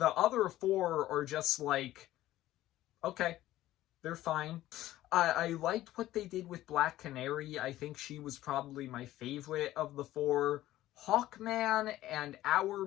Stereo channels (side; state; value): right; quieter; 14.9 dB